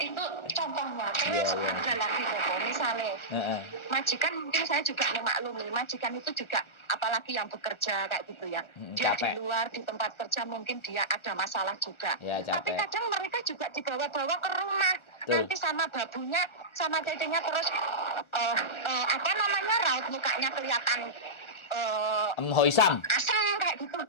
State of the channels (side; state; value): right; late; 1.4 ms